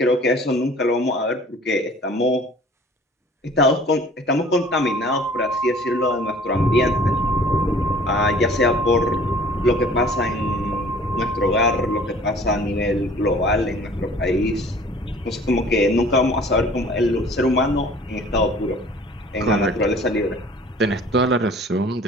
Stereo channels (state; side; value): normal; both; correlation 0.50